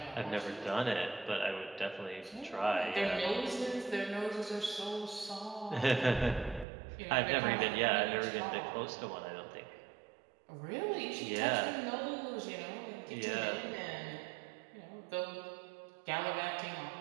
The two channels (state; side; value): drops out; left; at 6.7 s